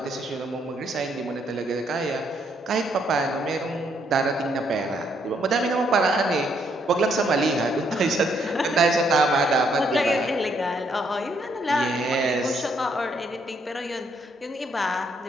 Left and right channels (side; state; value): both; normal; correlation 0.72